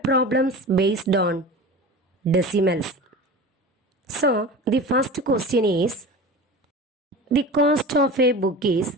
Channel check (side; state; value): both; normal; correlation 0.33